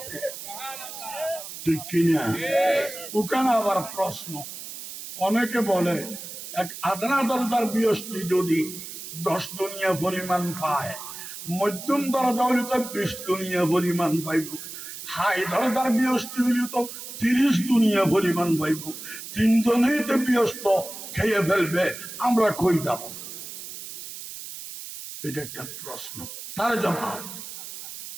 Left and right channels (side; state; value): right; noise; hiss, 11 dB below the sound